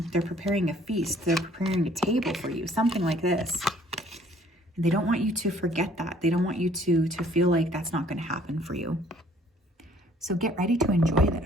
They're preparing a feast. They're preparing a table for you, something like this. They don't want you to forget that. They don't want you to feel like that's not going to happen for you. So get ready to enjoy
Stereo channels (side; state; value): both; normal; correlation 0.58